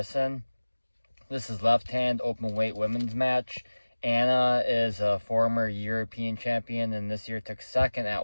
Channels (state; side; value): inverted; both; correlation -1.00